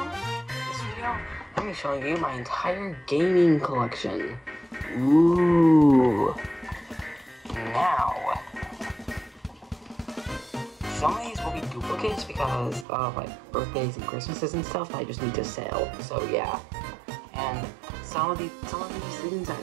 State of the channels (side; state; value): left; drops out; at 12.9 s